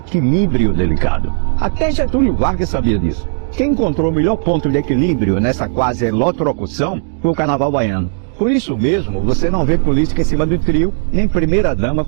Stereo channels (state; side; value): silent; left; digital silence